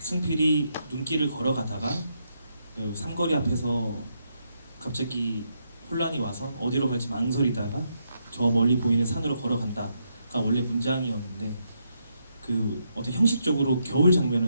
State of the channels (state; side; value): inverted; both; correlation -0.79